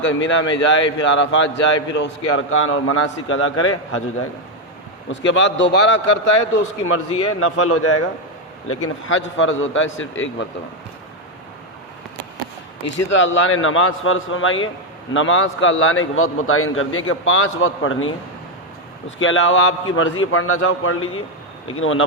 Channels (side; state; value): both; normal; correlation 0.04